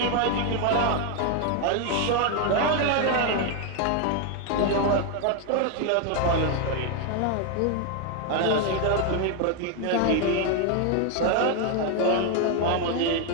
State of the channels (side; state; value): both; different; correlation 0.01